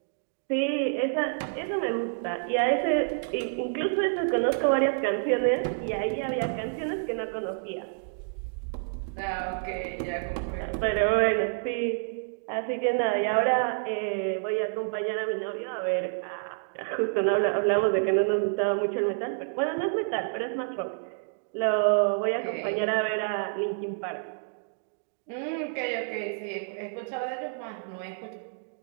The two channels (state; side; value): silent; left; digital silence